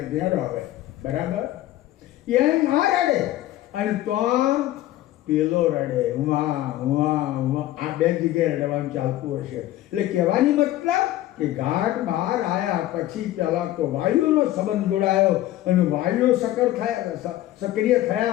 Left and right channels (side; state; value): right; quieter; 14.7 dB